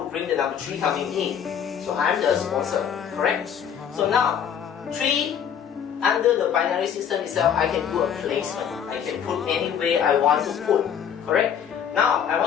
who bring the number 3 coming in. So I'm the sponsor, correct? So now, 3, under the binary system itself, I can do a placement. I can put anywhere I want to put, correct? Now, I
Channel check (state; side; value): quieter; right; 8.3 dB